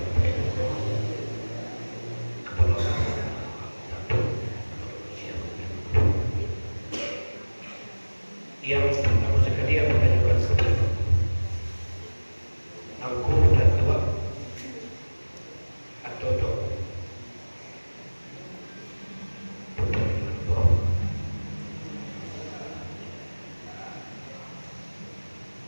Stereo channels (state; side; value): inverted; both; correlation -1.00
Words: yang pertama sekali yang mengajukan kepada aku dan tua atau dok